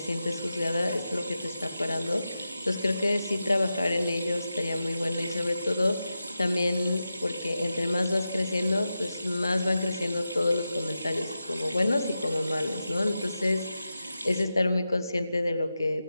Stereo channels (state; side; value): inverted; both; correlation -0.91